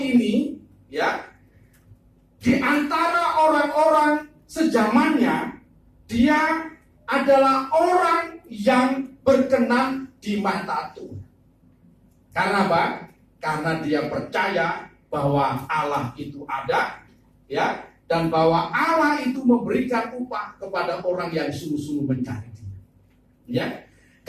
ya, di antara orang-orang sezamannya, dia adalah orang yang berkenan di mata Tuhan. Karena apa? Karena dia percaya bahwa Allah itu ada, ya, dan bahwa Allah itu memberikan upah kepada orang yang sungguh-sungguh mencari Dia. Ya,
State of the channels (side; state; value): both; identical; correlation 1.00